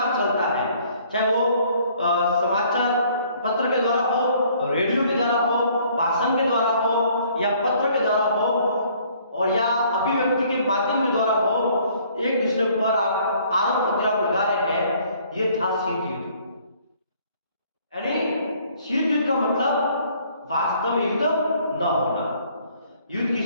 चलता है, चाहे वो समाचार पत्र के द्वारा हो, रेडियो के द्वारा हो, भाषण के द्वारा हो, या पत्र के द्वारा हो, और या व्यक्ति के माध्यम के द्वारा वो एक दूसरे पर आरोप प्रत्यारोप लगा रहे हैं, ये था शीत युद्ध। यानी शीत युद्ध का मतलब वास्तव में युद्ध न होना, युद्ध की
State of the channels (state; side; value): inverted; both; correlation -0.60